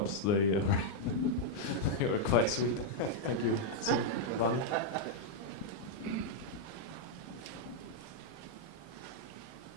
they were quite sweet. Thank you, Vani.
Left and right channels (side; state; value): right; late; 39 ms